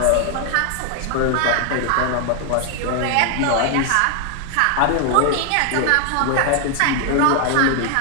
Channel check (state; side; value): different; both; correlation 0.00